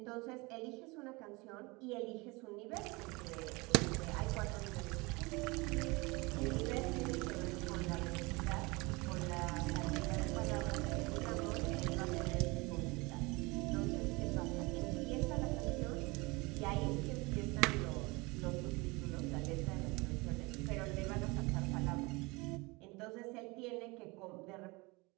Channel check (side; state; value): left; quieter; 25.1 dB